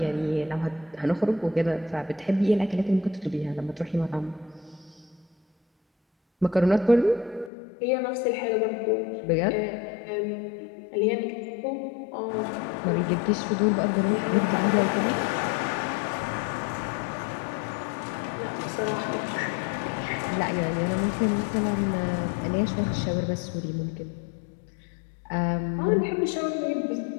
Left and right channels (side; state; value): right; drops out; at 7.5 s